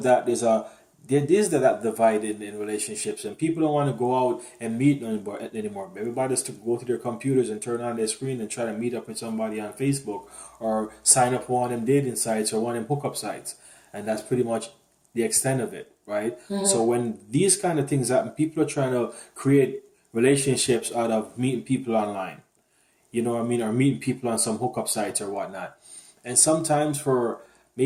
that, there is that divide in relationships, and people don't want to go out and meet anymore. Everybody just to go to their computers and turn on their screen and try to meet up with somebody on Facebook or sign up for one of them dating sites or one of them hookup sites, and that's pretty much the extent of it, right? Mm-hmm. So when these kind of things happen, people are trying to create relationships out of meeting people online. You know what I mean? Or meeting people on some hookup sites or whatnot. And sometimes for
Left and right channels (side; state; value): both; identical; correlation 1.00